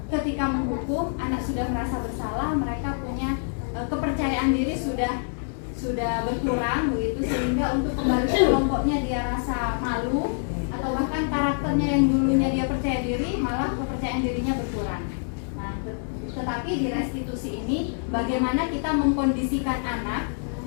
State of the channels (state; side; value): silent; right; 61 dB below the other